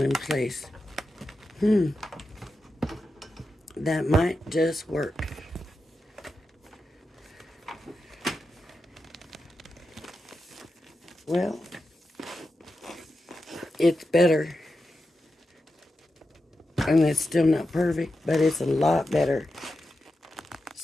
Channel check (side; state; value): both; normal; correlation 0.89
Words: in place. That might just work. Well, it's better. And it's still not perfect, but it's a lot better.